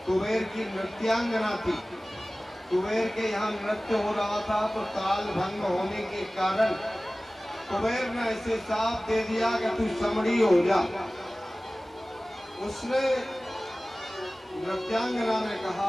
कुबेर की नृत्यांगना थी। कुबेर के यहाँ नृत्य हो रहा था तो ताल भंग होने के कारण कुबेर ने ऐसे साफ दे दिया कि तू समड़ी हो जा। उसने नृत्यांगना ने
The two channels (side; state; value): both; normal; correlation 0.97